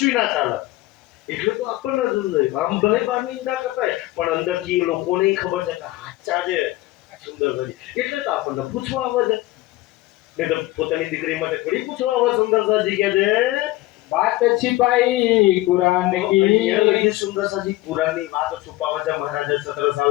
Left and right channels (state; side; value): quieter; right; 17.9 dB